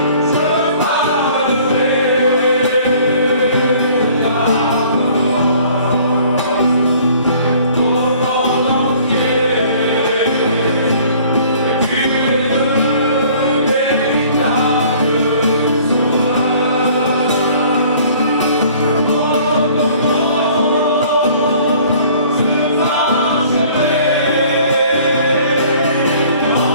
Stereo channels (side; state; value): both; inverted; correlation -0.54